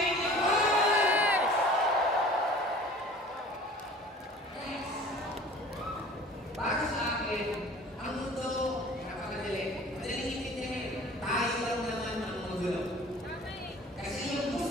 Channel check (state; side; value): normal; both; correlation 0.46